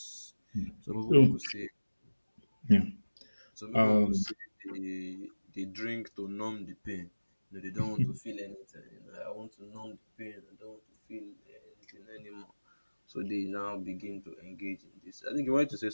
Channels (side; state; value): both; inverted; correlation -1.00